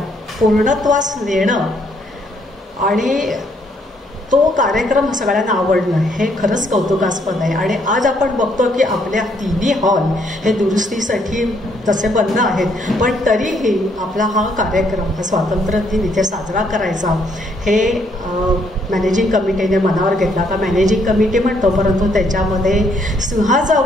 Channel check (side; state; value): both; normal; correlation 0.70